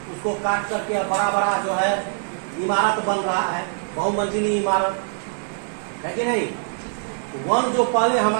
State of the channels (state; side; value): silent; left; digital silence